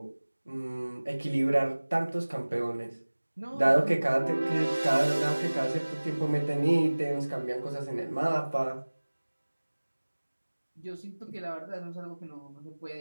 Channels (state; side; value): inverted; both; correlation -1.00